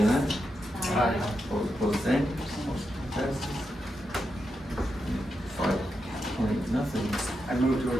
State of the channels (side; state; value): both; normal; correlation 0.86